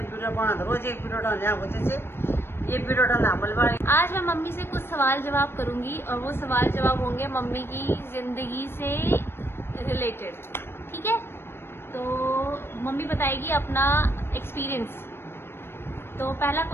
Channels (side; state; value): right; late; 0.11 ms